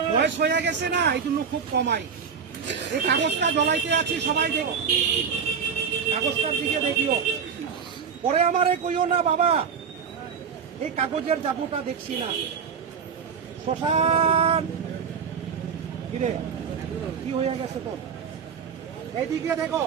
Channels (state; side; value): quieter; left; 6.6 dB